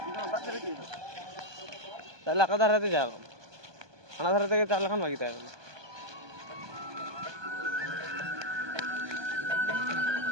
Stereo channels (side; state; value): left; late; 1.2 ms